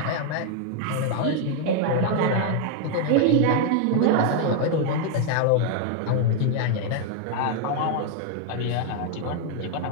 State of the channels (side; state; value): both; different; correlation 0.00